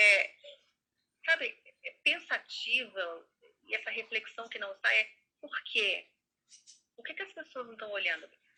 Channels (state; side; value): identical; both; correlation 1.00